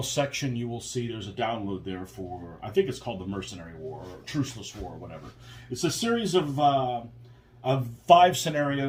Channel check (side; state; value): both; identical; correlation 1.00